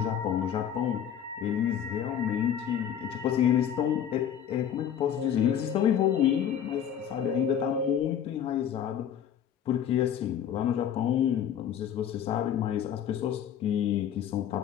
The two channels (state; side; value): quieter; right; 9.2 dB